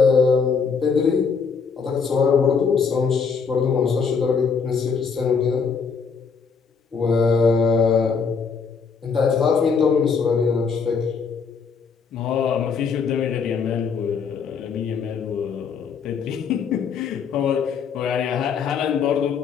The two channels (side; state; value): right; quieter; 5.7 dB